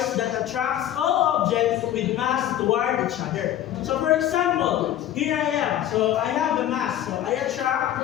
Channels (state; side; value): quieter; right; 12.0 dB